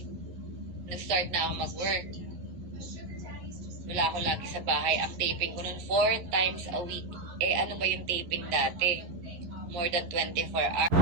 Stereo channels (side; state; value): left; late; 11 ms